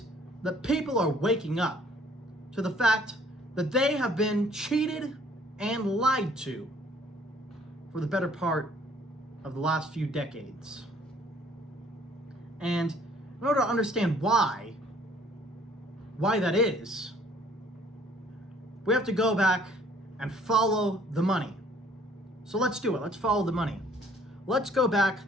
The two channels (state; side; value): normal; both; correlation 0.58